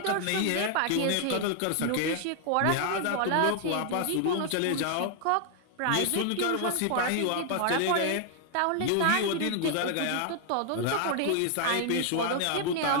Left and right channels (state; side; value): different; both; correlation 0.00